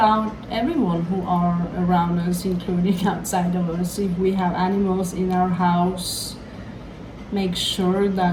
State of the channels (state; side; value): identical; both; correlation 1.00